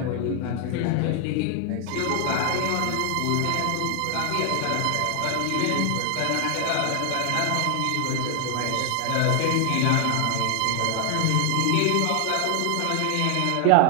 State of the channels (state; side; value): different; both; correlation 0.00